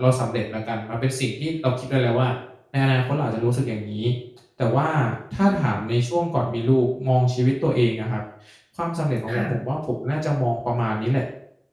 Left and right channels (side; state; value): both; identical; correlation 1.00